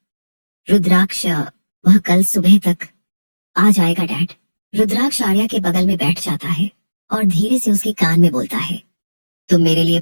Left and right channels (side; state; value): both; inverted; correlation -1.00